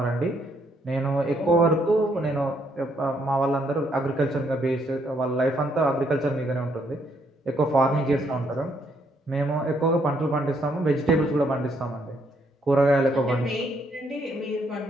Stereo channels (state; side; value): normal; both; correlation 0.72